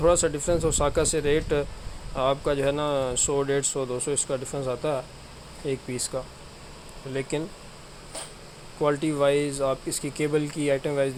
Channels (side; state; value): both; identical; correlation 1.00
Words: سا ڈفرینس اوساکا سے، ریٹ آپ کا جو ہے نا 100 150 200 اس کا ڈفرینس آتا ہے ایک پیس کا، لیکن کوالٹی وائز آپ اس کی کیبل کی آئٹم وائز